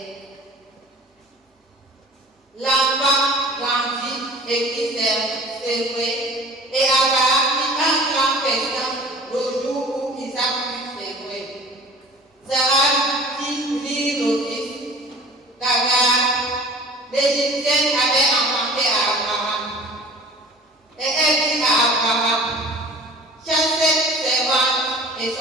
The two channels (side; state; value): both; normal; correlation 0.44